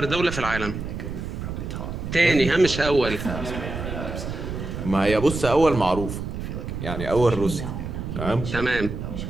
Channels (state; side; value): noise; right; rumble, 6 dB below the sound